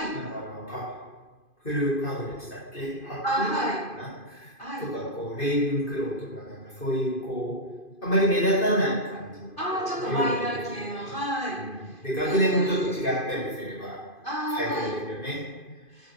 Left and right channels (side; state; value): right; late; 2.5 ms